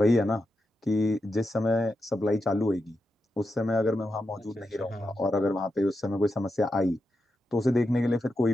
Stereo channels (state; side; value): normal; both; correlation 0.87